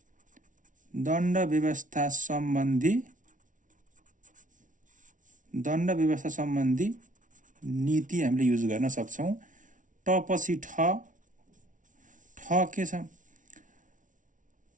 व्यवस्था सम्बन्धी नीति हामीले युज गर्न सक्छौं। ट पछि ठ के छ,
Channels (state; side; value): late; left; 0.37 ms